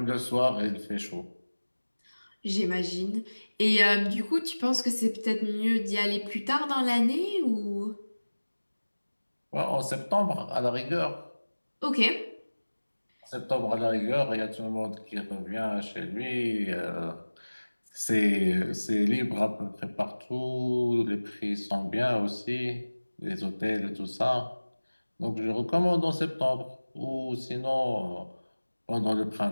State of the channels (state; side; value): inverted; both; correlation -1.00